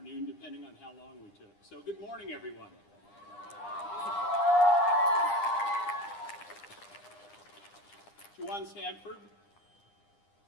depending on how long we took. So good morning, everyone. Juwan Sanford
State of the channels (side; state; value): right; late; 9.9 ms